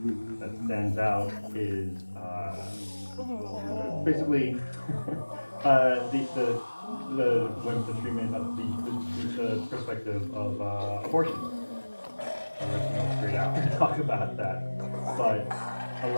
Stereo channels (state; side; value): inverted; both; correlation -1.00